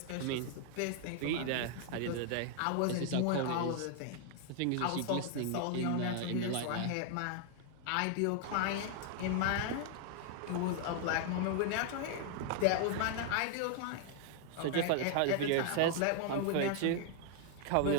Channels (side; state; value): both; different; correlation 0.00